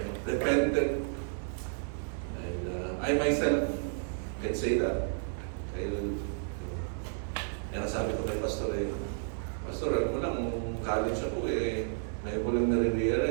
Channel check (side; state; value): left; silent; digital silence